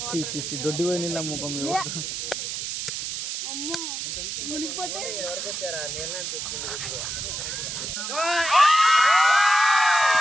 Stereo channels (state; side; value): noise; right; hiss, 4 dB below the sound